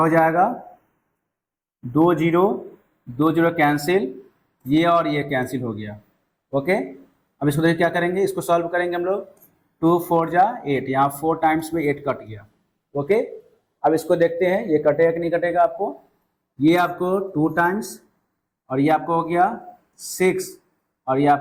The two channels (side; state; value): both; identical; correlation 1.00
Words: हो जाएगा 2 0 कैंसिल, ये और ये कैंसिल हो गया। ओके, अब इसको देखिए क्या करेंगे, इसको सॉल्व करेंगे हम लोग। 2 4 जा 8, यहाँ 4 टाइम्स में 8 कट गया। ओके, अब इसको देखते हैं ये कटेगा कि नहीं कटेगा आपको। ये आपको 2 टाइम्स और ये आपको हो गया 6 और ये